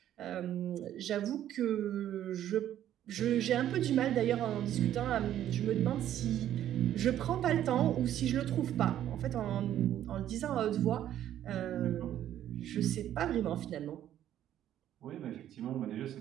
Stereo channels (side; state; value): left; quieter; 11.5 dB